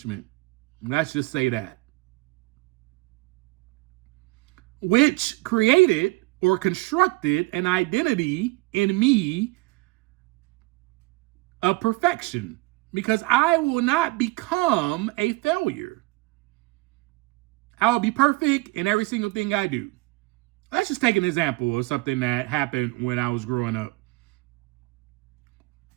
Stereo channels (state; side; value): quieter; left; 23.8 dB